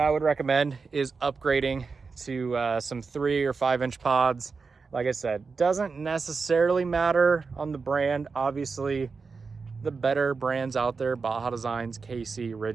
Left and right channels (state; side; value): quieter; left; 4.8 dB